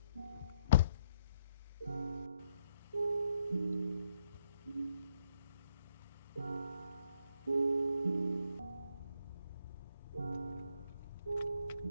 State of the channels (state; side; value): inverted; both; correlation -0.72